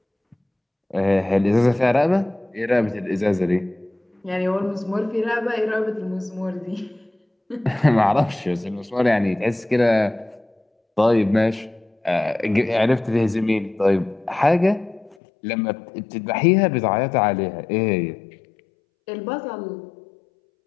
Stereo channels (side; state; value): right; drops out; at 15.2 s